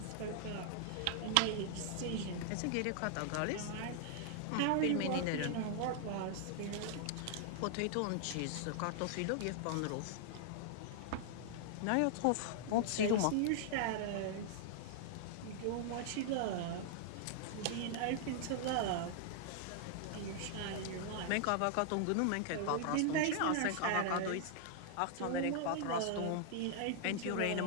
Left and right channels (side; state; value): both; different; correlation -0.01